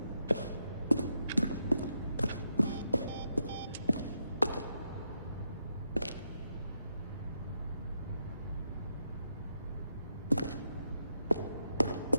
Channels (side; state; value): both; inverted; correlation -0.82